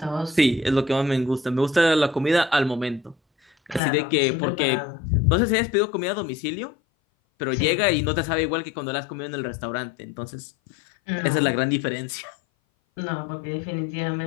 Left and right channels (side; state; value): right; drops out; at 3.8 s